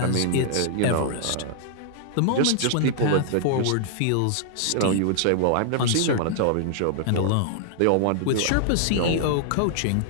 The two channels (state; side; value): different; both; correlation -0.01